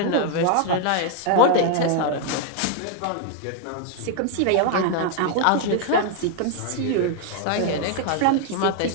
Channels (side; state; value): both; different; correlation 0.00